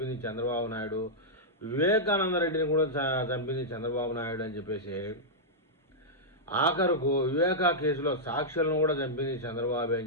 చంద్రబాబు నాయుడు, వివేకానంద రెడ్డిని కూడా చంపింది చంద్రబాబు నాయుడు అని చెప్పేసి, ఆఖరుకు వివేకా కేసులో సాక్షులను కూడా చంపింది చంద్రబాబు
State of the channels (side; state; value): both; normal; correlation -0.09